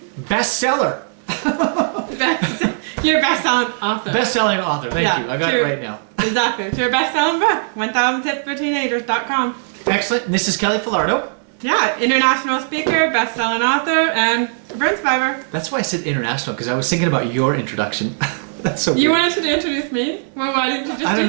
bestseller. You're a best-selling author. Best-selling author, thank you. I got it right now. Exactly. It's your best-selling book, 1000tipsforteenagers.com. Excellent. And this is Kelly Falardeau. Yeah, international speaker, best-selling author, and burn survivor. That's why I said international, because I was thinking about your introduction. That's so weird. You wanted to introduce me? Well, why didn't you just do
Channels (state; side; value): silent; left; digital silence